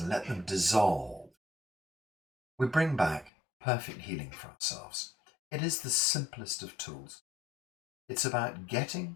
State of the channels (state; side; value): drops out; right; at 3.3 s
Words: let them dissolve, we bring back perfect healing for ourselves. It is the simplest of tools. It's about getting